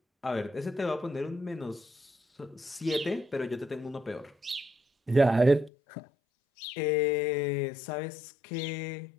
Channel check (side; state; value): right; drops out; at 5.7 s